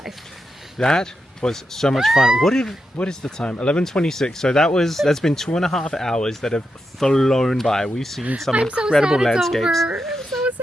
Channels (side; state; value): both; normal; correlation 0.86